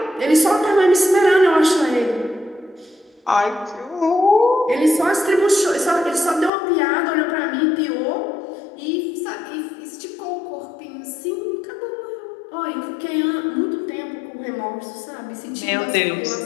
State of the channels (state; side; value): drops out; right; at 6.5 s